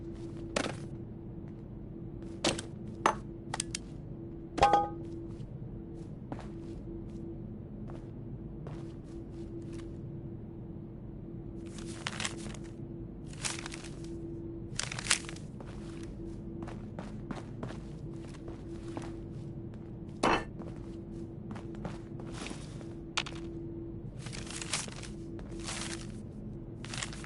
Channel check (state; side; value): identical; both; correlation 1.00